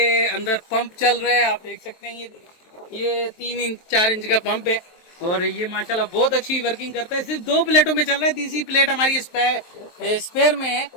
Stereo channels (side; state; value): right; late; 23 ms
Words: अंदर पंप चल रहा है, आप देख सकते हैं। ये 3 इंच 4 इंच का पंप है और ये माशाल्लाह बहुत अच्छी वर्किंग करता है। सिर्फ 2 प्लेटों में चल रहा है, तीसरी प्लेट हमारी स्पेयर में है,